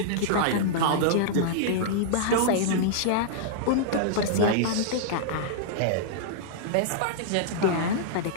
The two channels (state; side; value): different; both; correlation -0.02